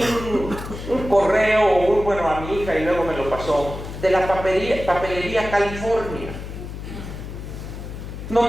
un correo, bueno, a mi hija y luego me lo pasó, de la papelería California,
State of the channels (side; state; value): left; noise; hum, 9 dB below the sound